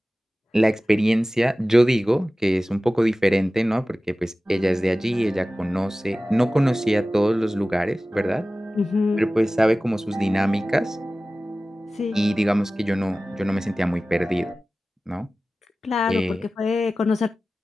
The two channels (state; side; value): normal; both; correlation 0.96